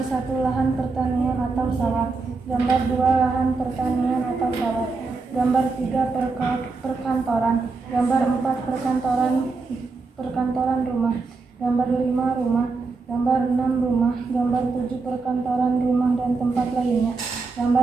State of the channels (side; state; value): left; quieter; 4.1 dB